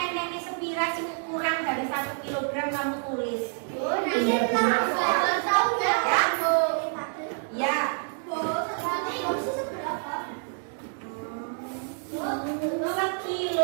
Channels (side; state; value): left; silent; 60 dB below the other